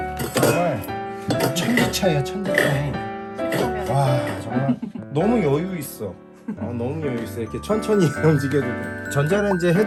정말 천지 차이야, 천지 차이. 와, 정말 너무 여유 있어. 너무 여유 있어. 이렇게 천천히 움직여도 돼. 전자레인지에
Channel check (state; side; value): identical; both; correlation 1.00